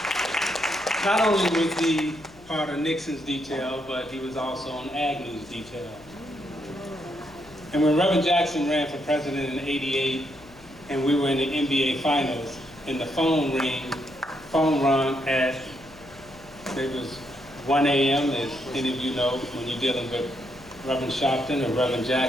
Not only was he part of Nixon's detail, but he was also on Agnew's detail. And when Reverend Jackson ran for president in '88, and we were in the NBA Finals, and the phone rung at, it was 1 a.m., as any of you know, when you're dealing with Reverend Sharpton or Reverend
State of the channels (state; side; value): noise; left; hum, 23 dB below the sound